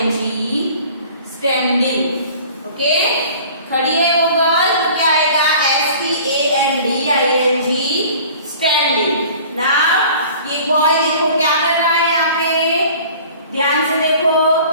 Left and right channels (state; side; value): inverted; both; correlation -0.46